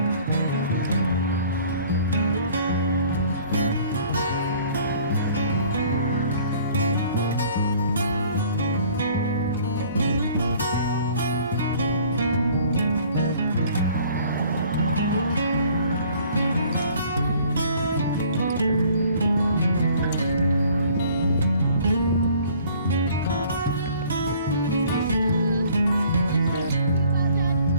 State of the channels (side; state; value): both; inverted; correlation -0.54